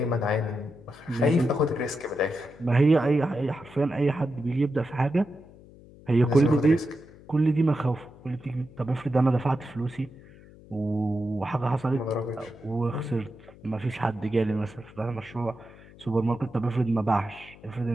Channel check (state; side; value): noise; left; hum, 22 dB below the sound